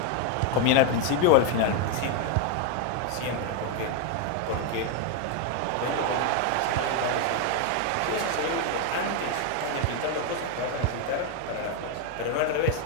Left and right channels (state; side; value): different; both; correlation 0.01